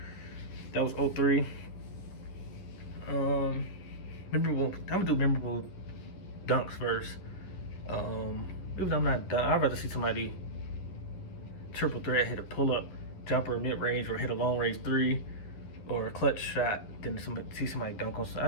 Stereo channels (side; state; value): right; late; 11 ms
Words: that was '03. Um, memorable. I'm gonna do memorable dunks first. Even though I'm not done, I'd rather see somebody triple threat hit a pull up jumper mid range or hit a long range three or a clutch shot than see somebody dunk on. I